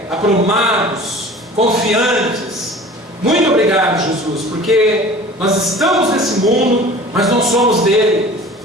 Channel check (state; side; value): normal; both; correlation 0.42